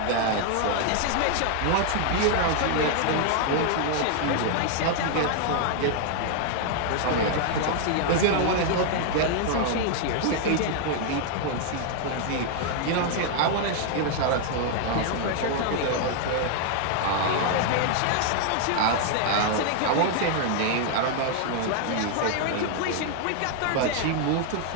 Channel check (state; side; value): different; both; correlation 0.00